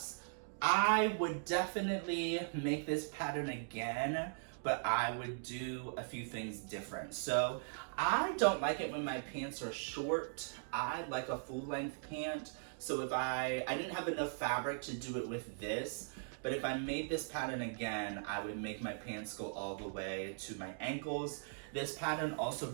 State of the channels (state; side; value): silent; left; digital silence